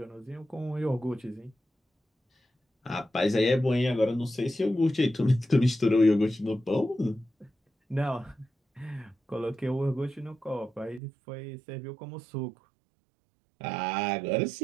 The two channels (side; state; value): left; drops out; at 11.0 s